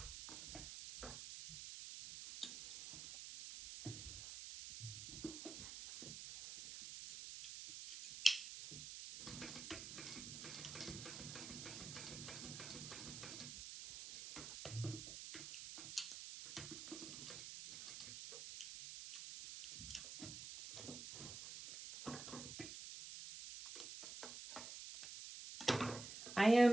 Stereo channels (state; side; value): noise; right; hiss, 8 dB below the sound